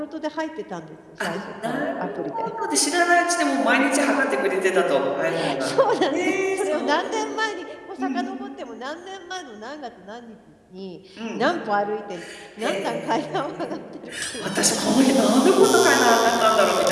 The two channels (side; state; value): both; identical; correlation 1.00